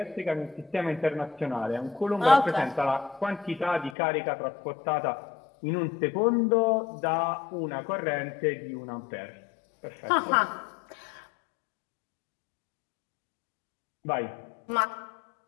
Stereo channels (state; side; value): drops out; right; at 4.0 s